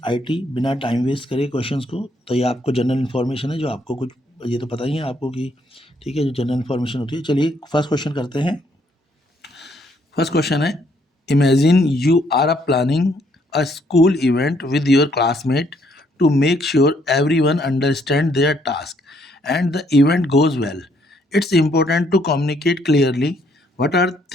आईटी बिना टाइम वेस्ट करे क्वेश्चंस को। तो ये आपको जनरल इन्फॉर्मेशन है, जो आपको कुछ ये तो पता ही है आपको कि ठीक है, जो जनरल इन्फॉर्मेशन होती है। चलिए फर्स्ट क्वेश्चन करते हैं। फर्स्ट क्वेश्चन है, imagine you are planning a school event with your classmate to make sure everyone understands their task and the event goes well. It's important to communicate clearly. What are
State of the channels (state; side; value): normal; both; correlation 0.69